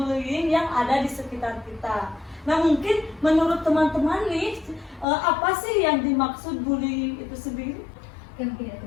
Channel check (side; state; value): right; drops out; at 5.1 s